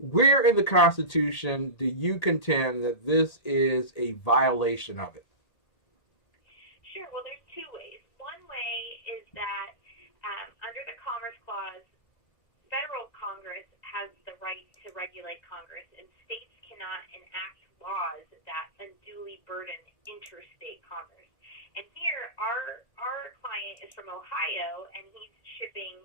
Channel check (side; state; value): right; late; 1.8 ms